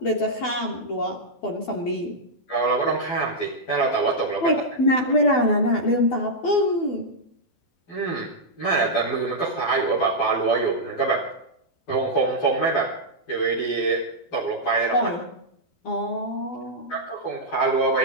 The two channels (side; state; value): right; late; 12 ms